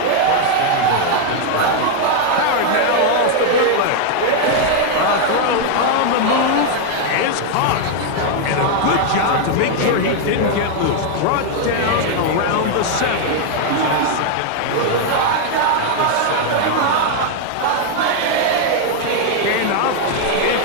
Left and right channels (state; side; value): different; both; correlation 0.00